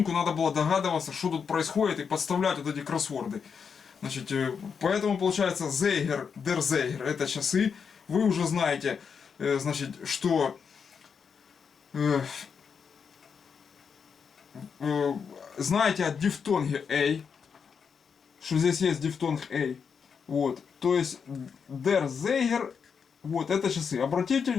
надо было догадываться, что тут происходит, и подставлять вот эти кроссворды. Значит, поэтому получается Zeiger, der Zeiger, это часы. Вы уже знаете, значит, что знаете о дифтонге A, что здесь есть дифтонг A. Вот, то есть der Zeiger, вот это часы. Обратите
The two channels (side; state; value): right; quieter; 6.3 dB